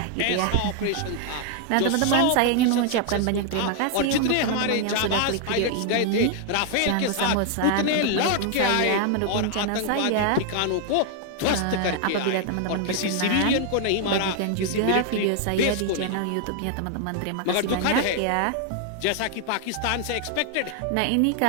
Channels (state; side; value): different; both; correlation 0.00